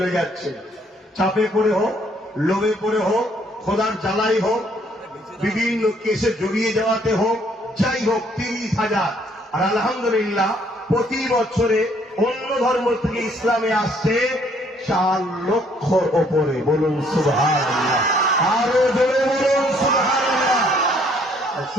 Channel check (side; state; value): both; normal; correlation 0.65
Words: যাচ্ছে। চাপে পড়ে হোক, লোভে পড়ে হোক, খোদার জ্বালাই হোক, বিভিন্ন কেসে জড়িয়ে যাওয়াতে হোক, যাই হোক 30,000। আর আলহামদুলিল্লাহ প্রতি বছরে অন্য ধর্ম থেকে ইসলামে আসছে 4 লক্ষর ওপরে। বলুন সুবহানাল্লাহ, আরো জোরে বলুন সুবহানাল্লাহ।